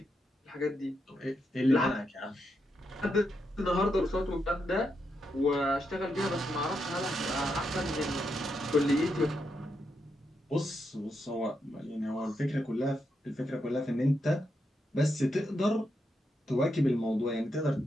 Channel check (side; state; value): both; normal; correlation 0.82